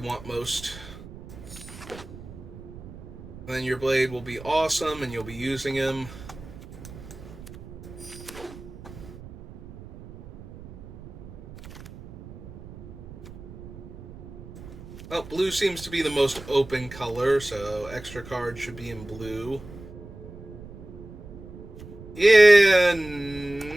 most. And then your blade will be awesome, and you'll be using him. Well, blue seems to be the most open color, so extra cards should be in blue. Yeah,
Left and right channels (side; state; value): right; noise; rumble, 15 dB below the sound